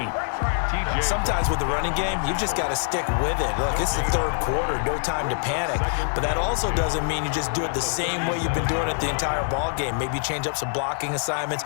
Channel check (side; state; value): right; silent; 62 dB below the other